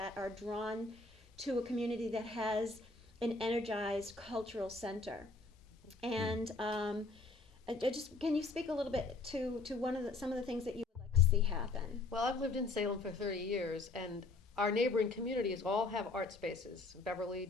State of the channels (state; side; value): quieter; right; 3.5 dB